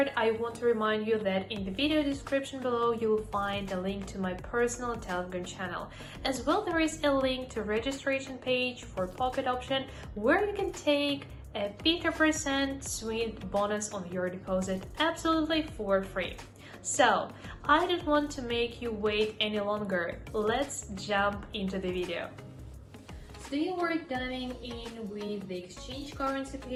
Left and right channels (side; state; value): both; identical; correlation 1.00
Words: I want to remind you that in the video description below, you'll find a link to my personal Telegram channel. As well, there is a link to registration page for pocket option where you can take a 50% sweet bonus on your deposit absolutely for free. So, I don't want to make you wait any longer. Let's jump into the video. Today we're diving in with the exchange currency